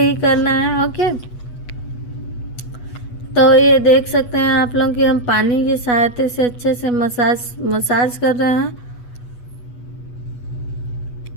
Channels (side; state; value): right; late; 8.2 ms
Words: ही करना है। ओके, तो ये देख सकते हैं आप लोग कि हम पानी की सहायता से अच्छे से मसाज कर रहे हैं।